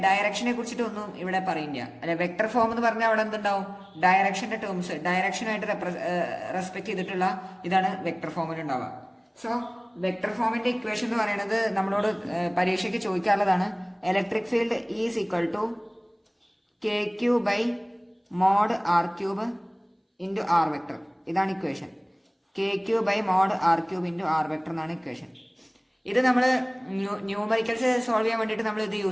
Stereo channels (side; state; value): both; identical; correlation 1.00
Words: ഡയറക്ഷനെ കുറിച്ചിട്ട് ഒന്നും ഇവിടെ പറയില്ല അല്ലെ. വെക്ടർ ഫോം എന്ന് പറഞ്ഞാൽ അവിടെ എന്തുണ്ടാവും, ഡയറക്ഷന്റെ ടേംസ് ഡയറക്ഷനായിട്ട് റെസ്പെക്ട് ചെയ്തിട്ടുള്ള ഇതാണ് വെക്ടർ ഫോമിൽ ഉണ്ടാവുക. സോ വെക്ടർ ഫോമിന്റെ ഇക്വേഷൻ എന്ന് പറയുന്നത് നമ്മളോട് പരീക്ഷയ്ക്ക് ചോദിക്കാനുള്ളതാണ്. Electric field is equal to KQ/mod R³ into R vector. ഇതാണ് equation. KQ/mod R³ into R vector എന്നാണ് ഇക്വേഷൻ. ഇത് നമ്മൾ ന്യൂമറിക്കൽസ് സോൾവ് ചെയ്യാൻ വേണ്ടിയിട്ട് നമ്മൾ ഇത്